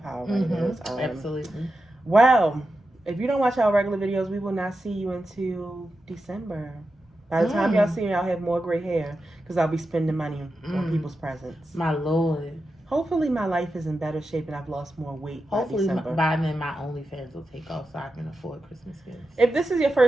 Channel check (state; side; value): normal; both; correlation 0.90